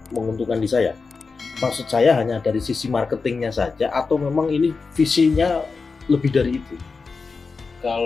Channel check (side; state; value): right; quieter; 4.5 dB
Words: menguntungkan di saya. Maksud saya hanya dari sisi marketingnya saja atau memang ini visinya lebih dari itu?